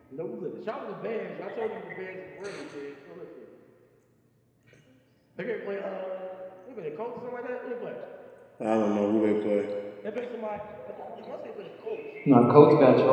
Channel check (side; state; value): both; identical; correlation 1.00